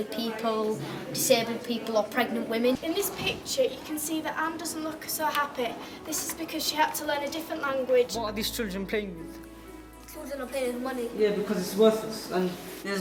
people, disabled people or pregnant women. In this picture you can see that Anne doesn't look so happy. This is because she had to learn a different language. What are these children playing with? Children are paying money. Yeah, because it's worthless. And there's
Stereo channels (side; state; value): both; identical; correlation 1.00